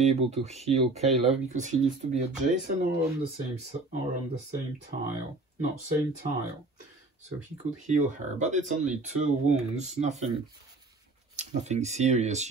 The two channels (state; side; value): quieter; left; 3.2 dB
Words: able to heal Caleb because he needs to be adjacent or on the same tile. No, same tile. So he could heal her, but it's only 2 wounds. Nothing serious.